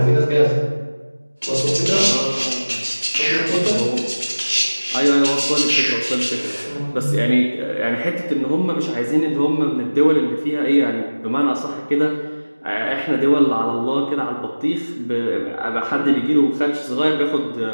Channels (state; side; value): inverted; both; correlation -1.00